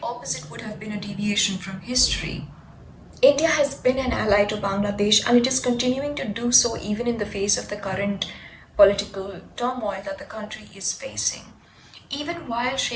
opposite would have been a deviation from history. India has been an ally to Bangladesh and it is continuing to do so even in the face of the current political turmoil that the country is facing. Even while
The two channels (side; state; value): both; identical; correlation 1.00